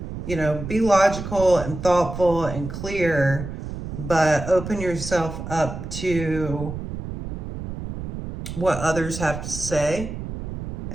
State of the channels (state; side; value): noise; right; rumble, 7 dB below the sound